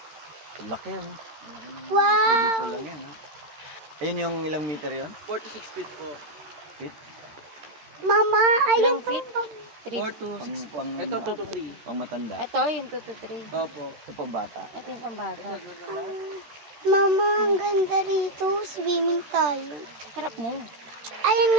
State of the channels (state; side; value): late; left; 13 ms